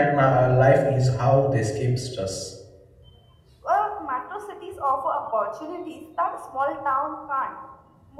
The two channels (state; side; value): identical; both; correlation 1.00